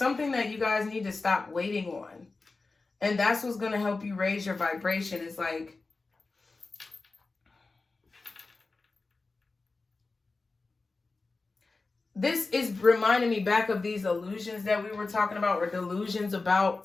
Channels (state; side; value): quieter; right; 3.7 dB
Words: that you guys need to stop waiting on. And that's what's going to help you raise your vibration. It's like, this is reminding me back of these illusions that we were talking about, or delusions